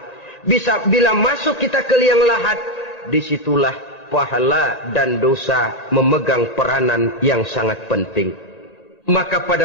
Bila masuk kita ke liang lahat, disitulah pahala dan dosa memegang peranan yang sangat penting. Maka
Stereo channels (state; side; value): late; right; 1.8 ms